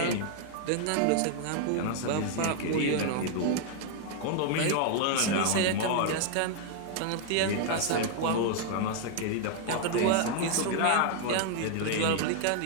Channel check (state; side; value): different; both; correlation 0.00